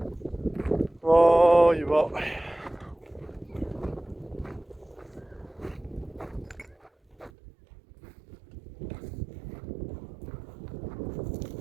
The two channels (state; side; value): drops out; left; at 7.3 s